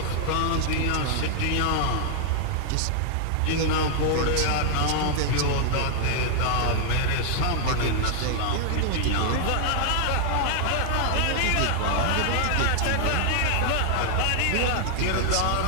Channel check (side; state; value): both; different; correlation 0.00